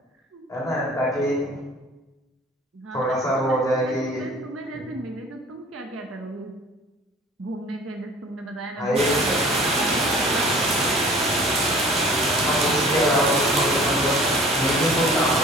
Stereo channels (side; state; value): both; normal; correlation 0.47